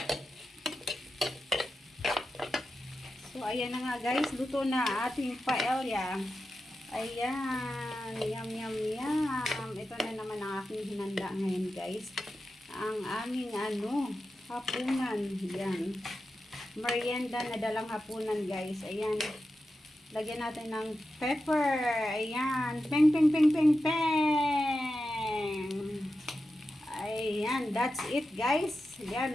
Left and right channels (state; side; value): normal; both; correlation 0.91